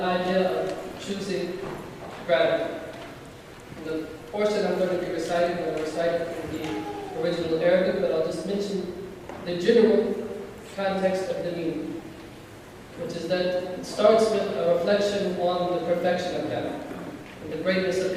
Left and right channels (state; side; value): identical; both; correlation 1.00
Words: idea of choosing gratitude. The portion I'm going to be reciting, I'm going to recite it in the original Arabic, but I'll just mention the general context of the meaning, which is that it starts with a reflection on the perfection of God, and the greatness of